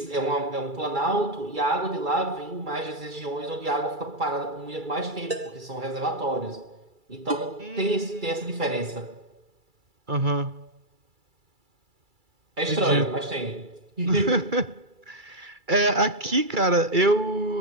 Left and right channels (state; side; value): late; left; 2.3 ms